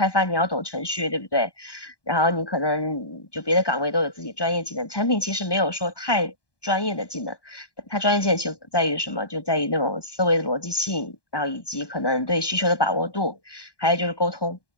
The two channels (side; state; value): right; late; 1.2 ms